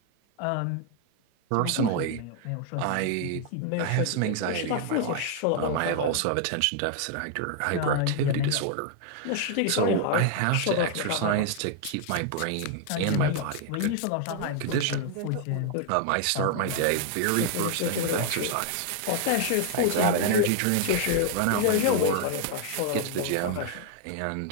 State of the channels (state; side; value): different; both; correlation 0.00